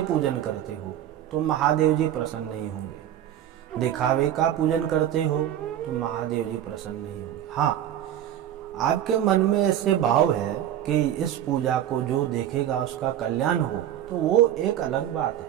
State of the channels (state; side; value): quieter; left; 11.3 dB